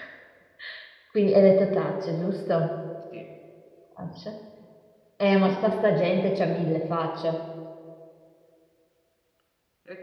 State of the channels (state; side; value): identical; both; correlation 1.00